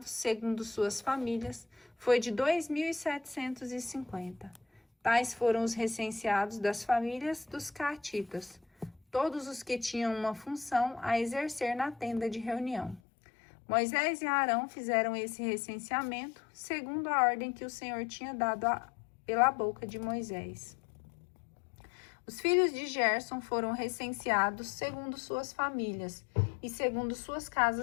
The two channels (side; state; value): right; drops out; at 13.0 s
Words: segundo suas famílias, foi de 2.750. Tais foram os recenseados das famílias dos caatitas, todos os que tinham uma função a exercer na tenda de reunião. Moisés e Arão fizeram esse recenseamento, segundo a ordem que o Senhor tinha dado pela boca de Moisés. Os filhos de Gerson foram recenseados segundo suas famílias e segundo suas